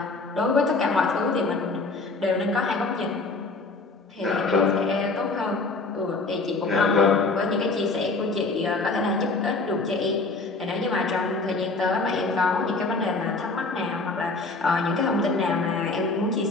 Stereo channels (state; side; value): quieter; right; 3.6 dB